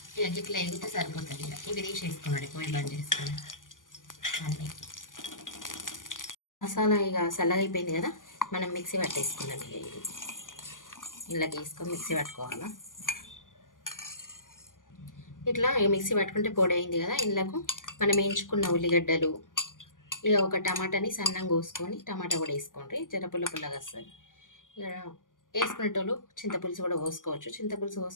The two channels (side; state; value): right; late; 0.88 ms